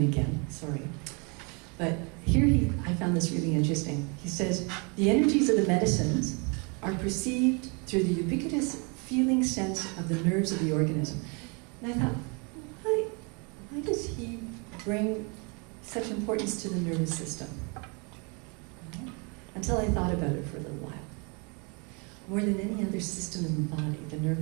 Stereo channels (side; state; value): left; quieter; 32.8 dB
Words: again, sorry. But here I found this really interesting. He says, the energies of the medicines are perceived through the ubiquitous feeling sense of the nerves of the organism. And I thought, why does he bring such importance to the nervous system? Until I thought about it for a little while. More than any other system in the body, the